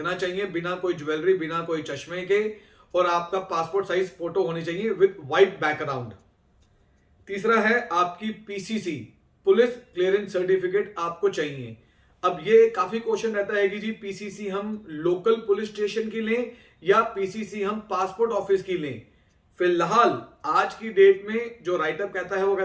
चाहिए, बिना कोई ज्वेलरी, बिना कोई चश्मे के, और आपका पासपोर्ट साइज फोटो होनी चाहिए विद व्हाइट बैकग्राउंड। तीसरा है आपकी पीसीसी, पुलिस क्लियरेंस सर्टिफिकेट आपको चाहिए। अब ये काफी क्वेश्चन रहता है कि जी पीसीसी हम लोकल पुलिस स्टेशन की लें या पीसीसी हम पासपोर्ट ऑफिस की लें। फिलहाल आज की डेट में जो राइटअप कहता है वो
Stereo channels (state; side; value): identical; both; correlation 1.00